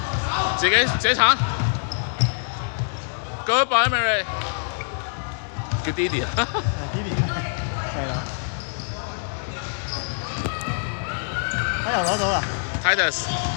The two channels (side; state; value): right; silent; digital silence